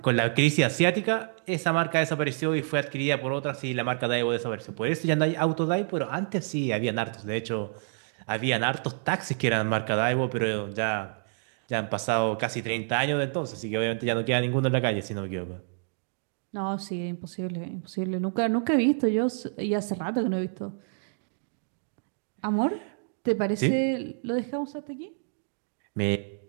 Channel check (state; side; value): silent; left; digital silence